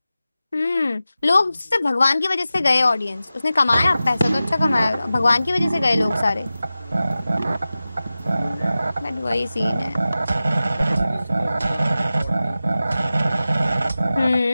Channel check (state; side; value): inverted; both; correlation -0.95